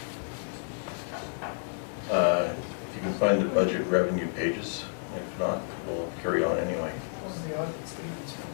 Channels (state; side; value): silent; right; 58 dB below the other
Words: If you can find the budget revenue pages, if not, we'll carry on anyway. What was the audit statements?